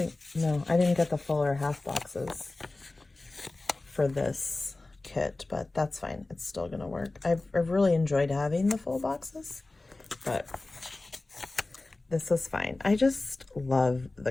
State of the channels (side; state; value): right; quieter; 3.1 dB